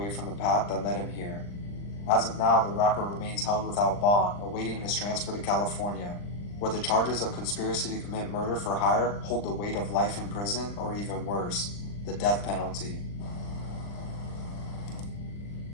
from the path that led him here. As of now, the rapper remains held without bond, awaiting his transfer to California, where the charges of conspiracy to commit murder for hire hold the weight of life in prison, or even worse, the death penalty.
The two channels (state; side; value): late; right; 39 ms